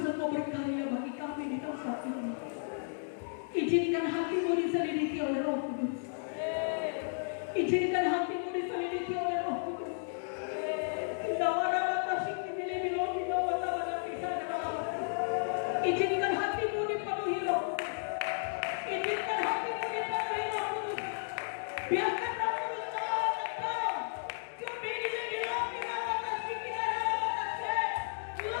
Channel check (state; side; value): silent; right; digital silence